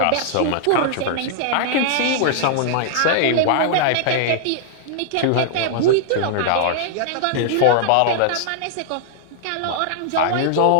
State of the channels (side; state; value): both; different; correlation -0.01